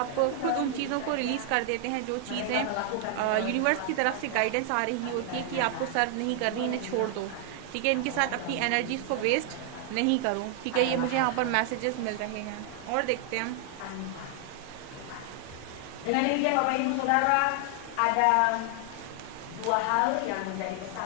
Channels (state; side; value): different; both; correlation 0.00